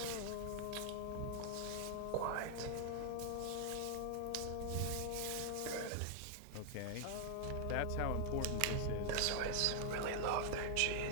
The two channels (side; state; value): both; different; correlation 0.00